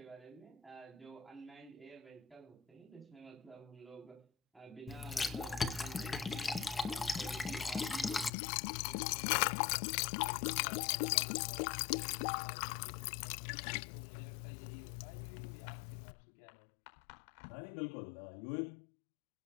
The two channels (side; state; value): right; drops out; at 8.3 s